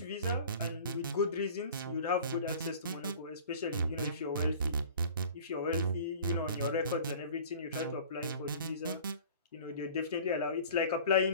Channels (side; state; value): both; inverted; correlation -0.44